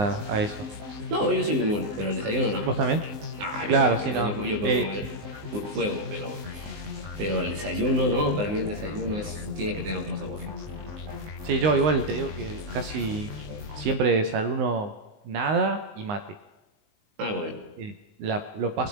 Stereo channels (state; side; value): late; left; 19 ms